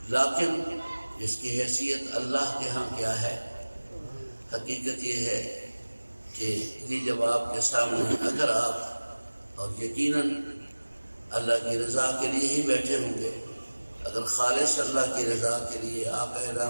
لیکن اس کی حیثیت اللہ کے ہاں کیا ہے؟ حقیقت یہ ہے کہ یہ جب آپ کے سامنے اگر آپ اور یقیناً اللہ کی رضا کے لیے ہی بیٹھے ہوں گے، اگر خالص اللہ کی رضا کے لیے آقا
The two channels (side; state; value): both; inverted; correlation -1.00